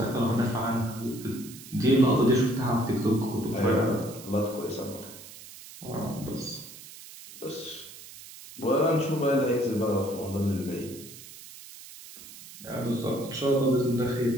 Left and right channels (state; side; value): noise; right; hiss, 16 dB below the sound